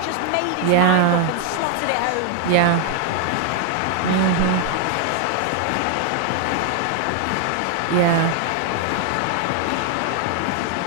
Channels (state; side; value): different; both; correlation 0.00